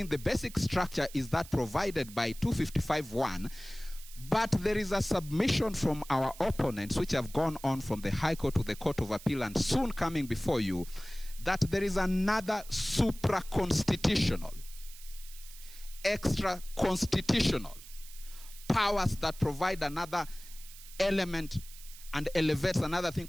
the basic structure is that provided by 255(1), but there is a submission from our opponents which have gone on from the High Court to the Court of Appeal and soon coming before you, that there is another supra-constitutional, extra-constitutional powers that provide another element and elevates another thing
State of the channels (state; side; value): noise; right; hiss, 17 dB below the sound